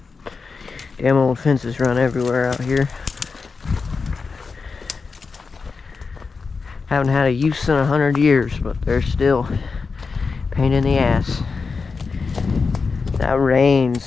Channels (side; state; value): right; quieter; 4.7 dB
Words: Damn old fences run everywhere out here. Haven't had a use in 100 years, but they're still a pain in the ass. That